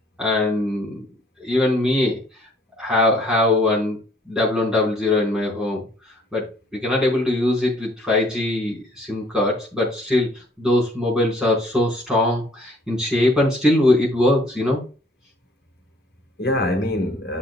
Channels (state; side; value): normal; both; correlation 0.59